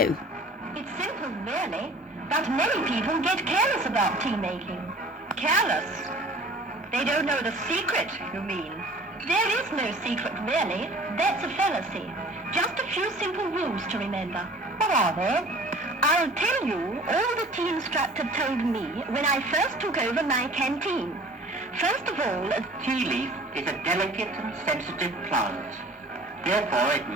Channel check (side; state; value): both; normal; correlation 0.47